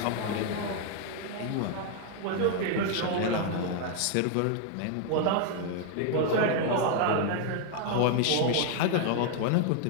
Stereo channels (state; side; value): different; both; correlation 0.00